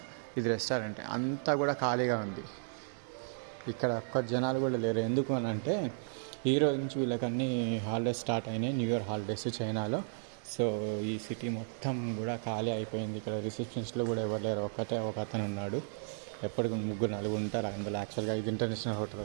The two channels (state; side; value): silent; left; digital silence